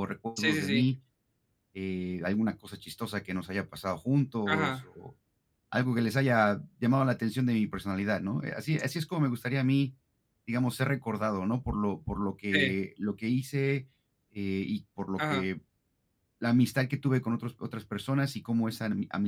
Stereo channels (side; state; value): both; identical; correlation 1.00